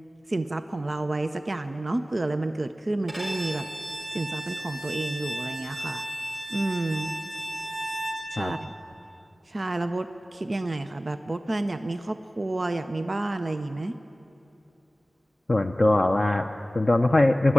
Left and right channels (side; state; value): both; normal; correlation 0.96